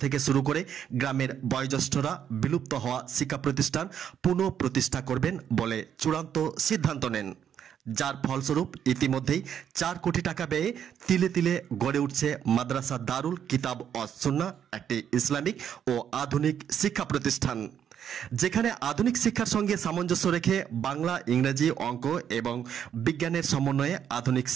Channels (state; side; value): quieter; left; 8.9 dB